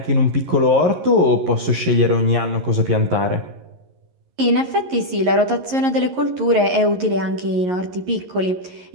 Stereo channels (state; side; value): late; left; 11 ms